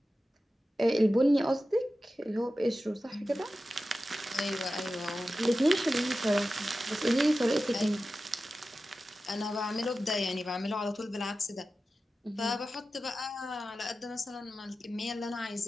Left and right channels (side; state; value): both; normal; correlation 0.93